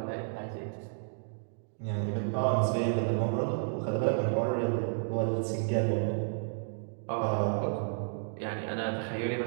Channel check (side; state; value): left; silent; digital silence